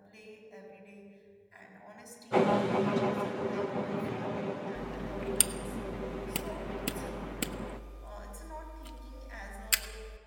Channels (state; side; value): identical; both; correlation 1.00